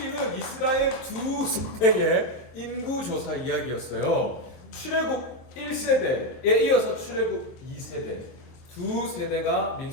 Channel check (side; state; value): right; late; 23 ms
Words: 이스라엘 두 세대의 인구 조사 이야기였어요. 출애굽 1세대에 이어서 출애굽 2세대 두 세대가